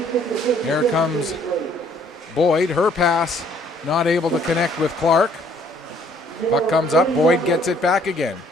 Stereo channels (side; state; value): both; normal; correlation 0.62